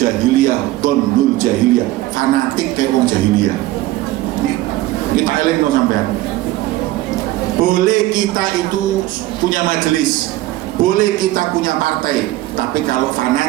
donnul jahiliyah, fanatik kayak orang jahiliyah. Kita eling no sampean. Boleh kita itu punya majelis, boleh kita punya partai, tapi kalau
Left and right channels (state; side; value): quieter; left; 16.7 dB